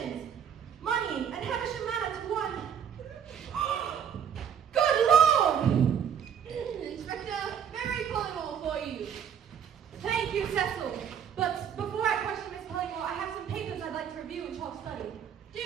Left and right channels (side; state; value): left; quieter; 8.3 dB